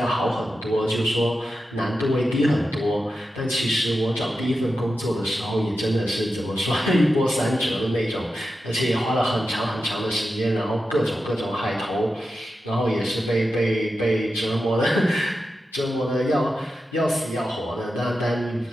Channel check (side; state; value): both; normal; correlation 0.90